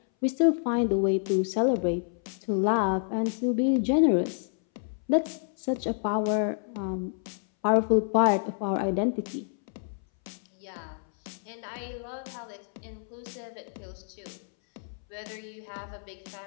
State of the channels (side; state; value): right; silent; 59 dB below the other